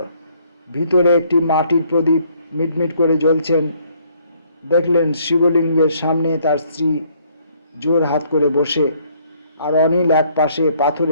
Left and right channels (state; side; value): inverted; both; correlation -0.65